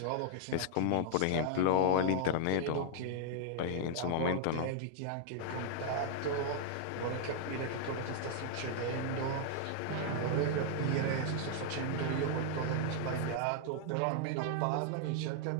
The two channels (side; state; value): both; different; correlation -0.01